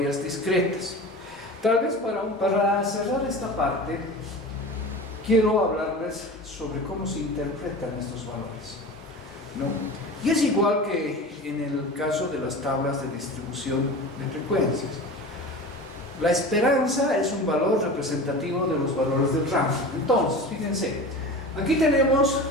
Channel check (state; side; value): normal; both; correlation 0.33